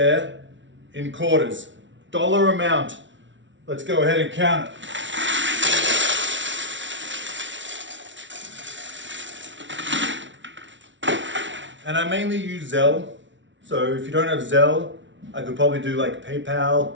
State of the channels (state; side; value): late; left; 0.55 ms